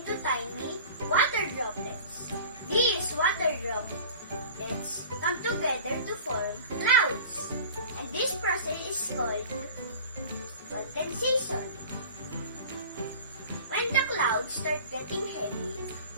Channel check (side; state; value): both; inverted; correlation -0.41